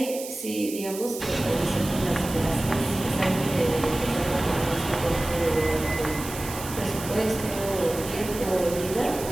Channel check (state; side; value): noise; right; hiss, 10 dB below the sound